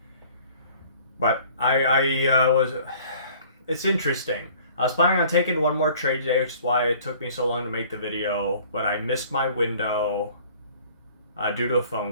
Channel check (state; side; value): inverted; both; correlation -0.52